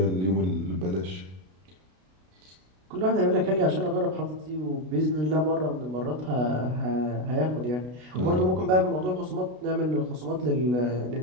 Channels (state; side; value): late; left; 33 ms